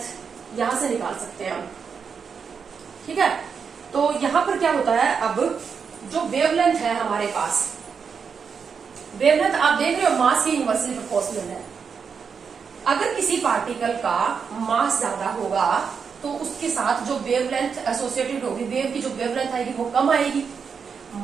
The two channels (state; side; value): quieter; left; 6.2 dB